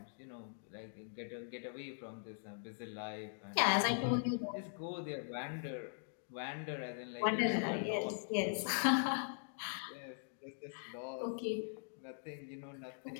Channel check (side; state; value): right; silent; digital silence